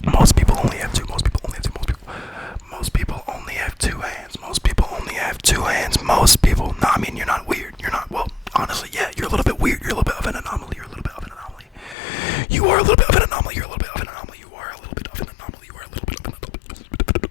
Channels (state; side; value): drops out; right; at 12.0 s